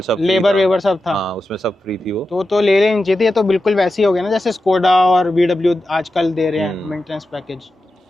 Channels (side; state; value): both; normal; correlation 0.91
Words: सब फ्री लेबर था। वेबर सब था? हाँ, उसमें सब फ्री थी वो। तो ले लेनी चाहिए थी। ये तो बिल्कुल वैसी हो गया ना जैसे स्कोडा और VW आजकल दे रहे हैं मेंटेनेंस पैकेज।